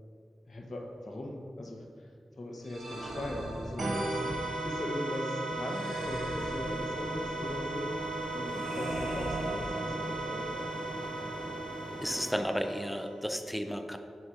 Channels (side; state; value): both; normal; correlation 0.85